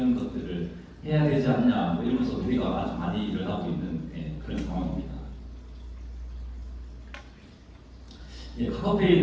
것들을 해야 되지 않냐 뭐 이러면서 우리가 아주 많이 일어나고 있는 그런 상황입니다.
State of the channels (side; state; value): both; identical; correlation 1.00